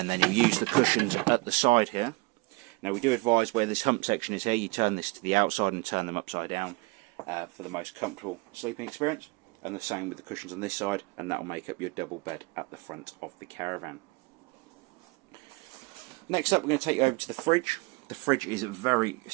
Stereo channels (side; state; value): left; quieter; 26.0 dB